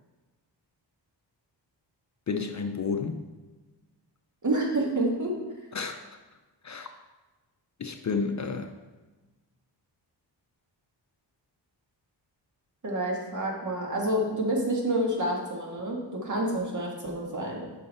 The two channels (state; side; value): normal; both; correlation 0.02